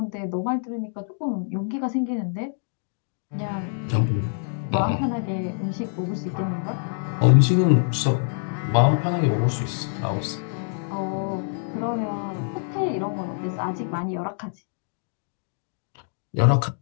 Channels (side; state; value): right; silent; digital silence